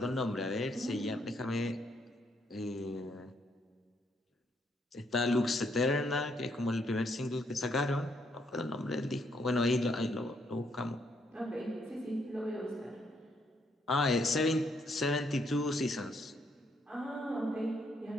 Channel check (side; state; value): both; normal; correlation 0.73